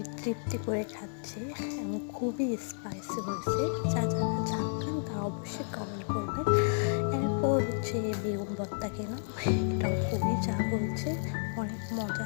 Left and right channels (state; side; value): silent; right; digital silence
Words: তৃপ্তি করে খাচ্ছি এবং খুবই স্পাইসি হয়েছে। যারা ঝাল খান তারা অবশ্যই কমেন্ট করবেন। এরপর হচ্ছে বেগুন ভর্তা খেলাম, এটাও খুবই ঝাল হয়েছে, অনেক মজা।